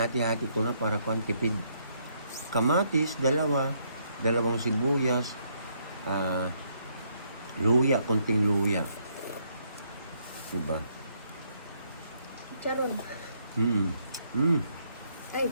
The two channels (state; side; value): inverted; both; correlation -0.73